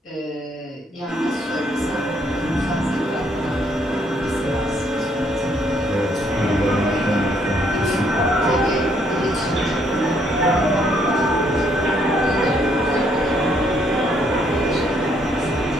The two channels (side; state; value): both; normal; correlation 0.69